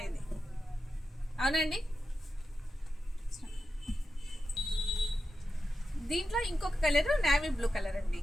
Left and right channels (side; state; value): both; normal; correlation 0.90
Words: అవునండి. దీంట్లో ఇంకొక కలర్ నేవీ బ్లూ కలర్ అండి.